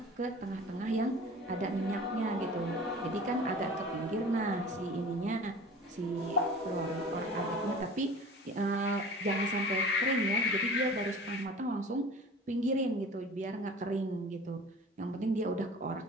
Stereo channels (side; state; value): both; normal; correlation 0.41